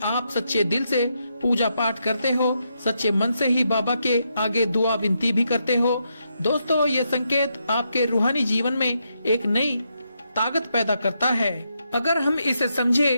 आप सच्चे दिल से पूजा पाठ करते हो, सच्चे मन से ही बाबा के आगे दुआ विनती भी करते हो। दोस्तों, ये संकेत आपके रूहानी जीवन में एक नई ताकत पैदा करता है अगर हम इसे समझे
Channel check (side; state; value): both; inverted; correlation -0.81